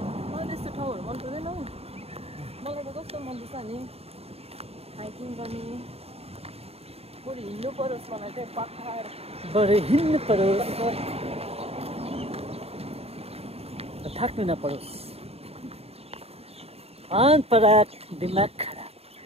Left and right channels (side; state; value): left; late; 0.29 ms